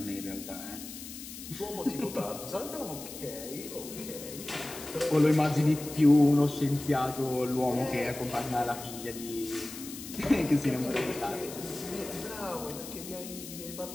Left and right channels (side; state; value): left; noise; hiss, 12 dB below the sound